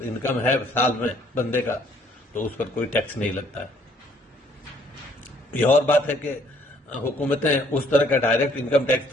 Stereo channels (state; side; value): normal; both; correlation 0.63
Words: انکم ہے سال میں بندے کا تو اس پر کوئی ٹیکس نہیں لگتا ہے۔ یہ اور بات ہے کہ حکومتیں اس طرح کا ڈائریکٹ انکم ٹیکس